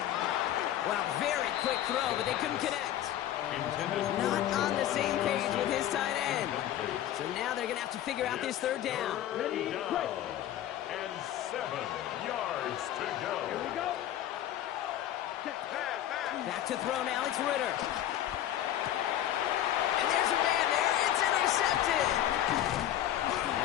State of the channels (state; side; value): quieter; right; 12.1 dB